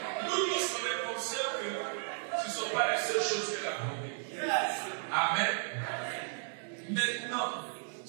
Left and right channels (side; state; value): left; silent; digital silence